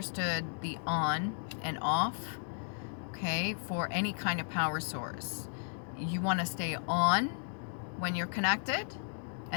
the on and off, okay, for any kind of power source, you want to stay on when you're connected,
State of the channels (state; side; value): silent; right; digital silence